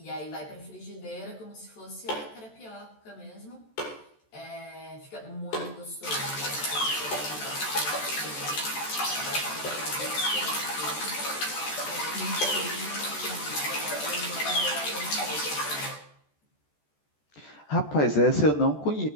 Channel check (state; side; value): late; right; 14 ms